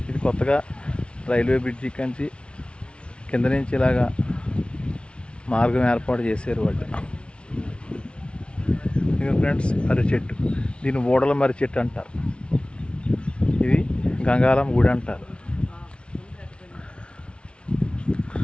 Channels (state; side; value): late; right; 0.059 ms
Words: ఇది కొత్తగా రైల్వే బ్రిడ్జి కంచి కింద నుంచి ఇలాగా మార్గం ఏర్పాటు చేశారు వాళ్ళు. ఇక ఫ్రెండ్స్, మర్రి చెట్టు, దీన్ని ఊడల మర్రి చెట్టు అంటారు. ఇది గంగాళమ్మ గుడి అంటారు.